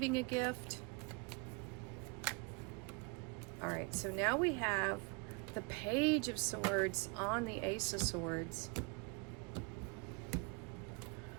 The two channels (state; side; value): quieter; left; 31.2 dB